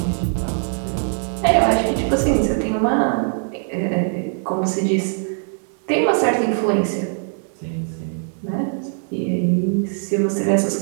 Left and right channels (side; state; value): left; silent; 65 dB below the other